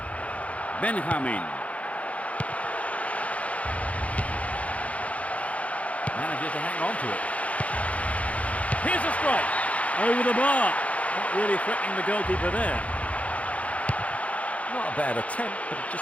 Benjamin. Manages to hang on to it. Here's a strike. Over the bar. Not really threatening the goalkeeper there. Not a bad attempt, but it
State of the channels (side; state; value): right; late; 0.066 ms